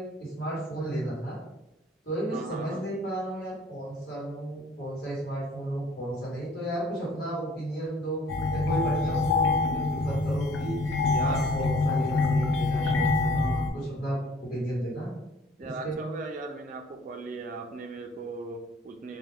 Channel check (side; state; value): both; normal; correlation 0.54